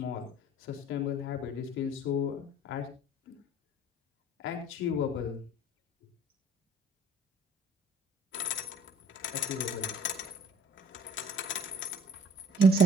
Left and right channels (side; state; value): both; normal; correlation 0.53